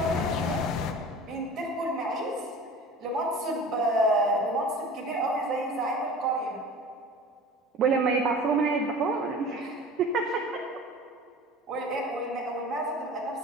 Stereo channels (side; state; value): both; normal; correlation 0.39